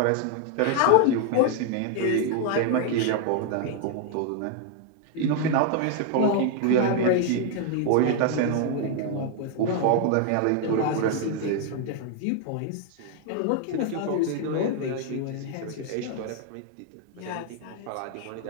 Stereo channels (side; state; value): both; different; correlation 0.00